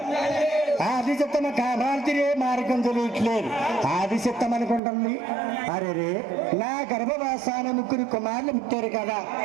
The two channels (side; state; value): left; drops out; at 4.8 s